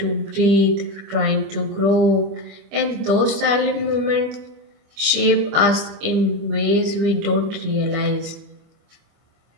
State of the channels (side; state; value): left; late; 25 ms